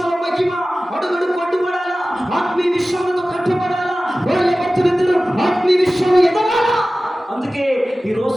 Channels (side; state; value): both; normal; correlation 0.96